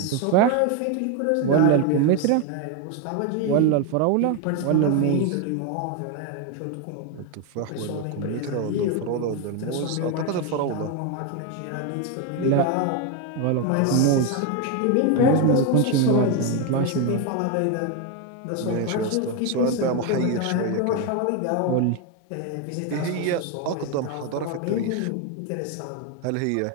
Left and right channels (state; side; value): different; both; correlation 0.02